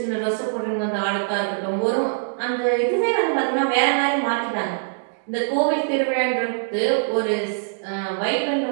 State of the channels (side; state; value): left; silent; digital silence